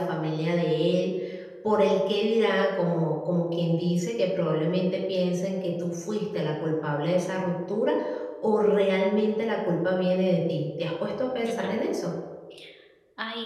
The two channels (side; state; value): both; identical; correlation 1.00